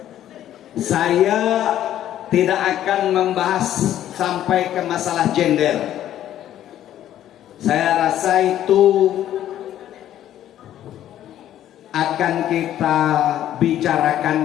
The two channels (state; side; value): quieter; right; 11.8 dB